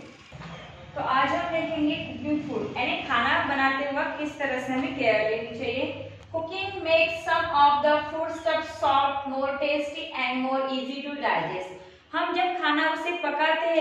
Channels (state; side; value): identical; both; correlation 1.00